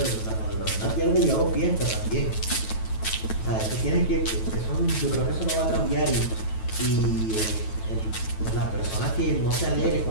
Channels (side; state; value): right; late; 9.2 ms